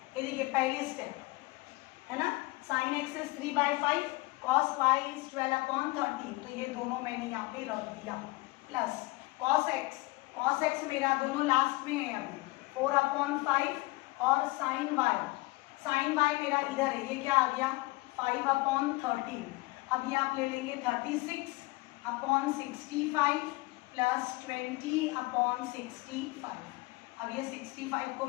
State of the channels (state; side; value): quieter; right; 22.3 dB